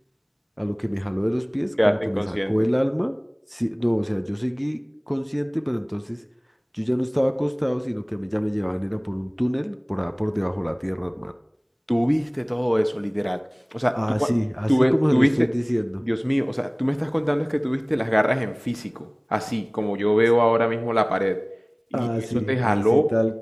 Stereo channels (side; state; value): both; identical; correlation 1.00